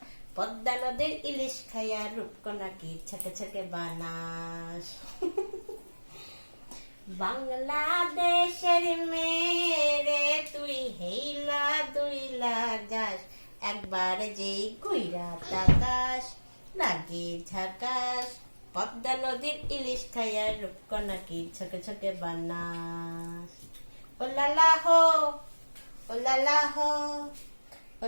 পদ্মা নদীর ইলিশ খাইয়া রূপকণাকে ছকে ছকে বানাস। বাংলাদেশের মেরে তুই হেইলা দুইলা যাস, একবার যে ঘুইরা তাকাস লাগে ঝাকাস, পদ্মা নদীর ইলিশ খাইয়া রূপকণাকে ছকে ছকে বানাস। ও লালা হো, ও লালা হো, ও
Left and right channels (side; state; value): both; inverted; correlation -1.00